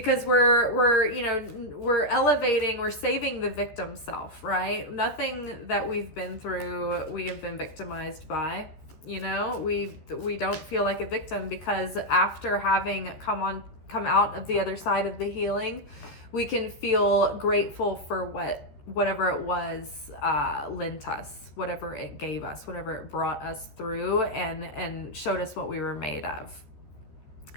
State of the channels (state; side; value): late; right; 13 ms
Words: we're elevating, we're saving the victim self, right? Nothing that we've been through, we have been victimized by. We don't feel like a victim because after having come out of the other side of the healing, we can feel grateful for whatever it was lent us, whatever it gave us, whatever it brought us through and showed us what we were made of.